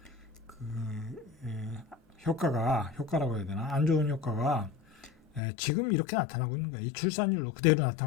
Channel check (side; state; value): right; drops out; at 5.4 s